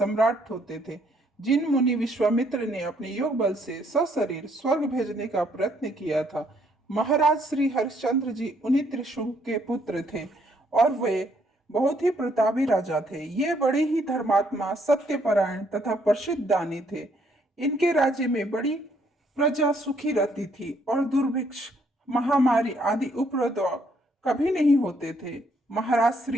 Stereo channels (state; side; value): normal; both; correlation 0.69